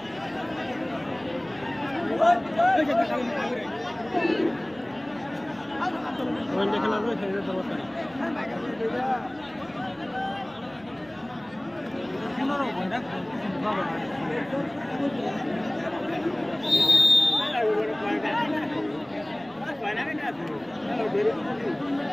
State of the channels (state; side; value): noise; right; rumble, 27 dB below the sound